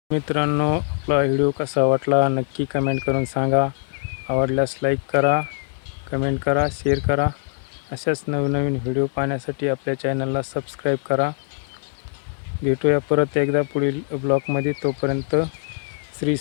मित्रांनो, आपला व्हिडिओ कसा वाटला नक्की कमेंट करून सांगा. आवडल्यास लाईक करा, कमेंट करा, शेअर करा अशाच नवनवीन व्हिडिओ पाहण्यासाठी आपल्या चॅनलला सबस्क्राईब करा. भेटूया परत एकदा पुढील ब्लॉगमध्ये. तोपर्यंत श्री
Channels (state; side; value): silent; right; digital silence